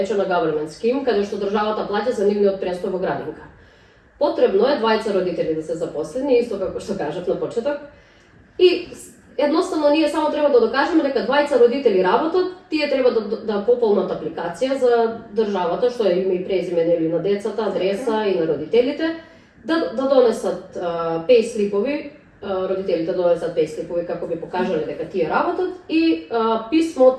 government scheme, каде што државата плаќа за нивниот престој во градинка. Потребно е двајца родители да се запослени, исто како што кажав на почеток. И едноставно ние само треба да докажеме дека двајца родители работат, тие треба да пополнат апликација за државата, што е име и презиме нели на децата, адреса и на родителите, да донесат пейслипови, родителите донесат пейслипови како би покажале дека тие работат и писмо од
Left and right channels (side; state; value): both; identical; correlation 1.00